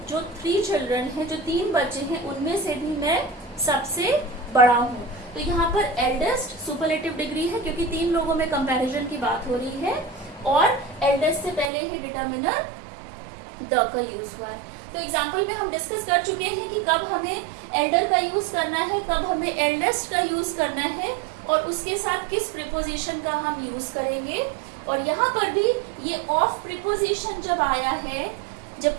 जो 3 चिल्ड्रन हैं, जो 3 बच्चे हैं, उनमें से भी मैं सबसे बड़ा हूँ। तो यहाँ पर एल्डेस्ट सुपरलेटिव डिग्री है क्योंकि 3 लोगों में कंपैरिजन की बात हो रही है, और एल्डेस्ट से पहले ही डिटर्मिनर द का यूज हुआ है। तो एग्जाम्पल में हम डिस्कस कर चुके हैं कि कब हमें एल्डर का यूज करना है, कब हमें एल्डेस्ट का यूज करना है, और उसके साथ किस प्रीपोजिशन का हम यूज करेंगे। और यहाँ पर भी ये ऑफ प्रीपोजिशन जब आया है,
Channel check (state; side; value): drops out; left; at 11.7 s